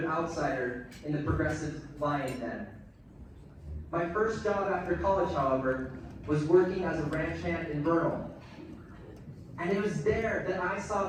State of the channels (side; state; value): both; identical; correlation 1.00